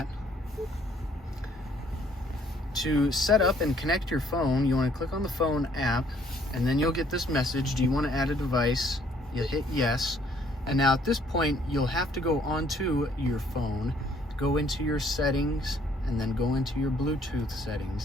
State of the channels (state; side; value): normal; both; correlation 0.63